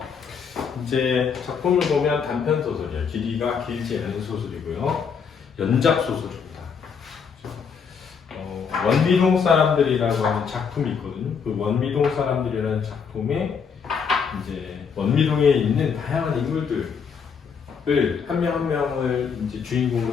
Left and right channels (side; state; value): right; quieter; 6.3 dB